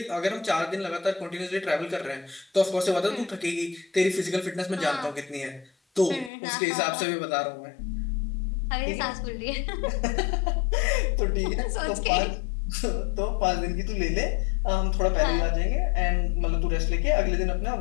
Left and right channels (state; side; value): drops out; right; at 6.3 s